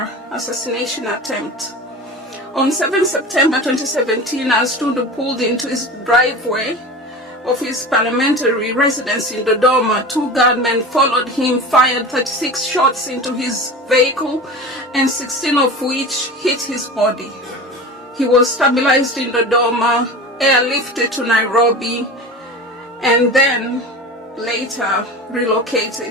assassination attempt. On 7 September 2017, as Tundu pulled into his driveway of his parliamentary residence in Dodoma, 2 gunmen followed him, fired 36 shots into his vehicle, and 16 of which hit his body. He was stabilized in Dodoma, airlifted to Nairobi, and then later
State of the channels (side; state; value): both; normal; correlation 0.32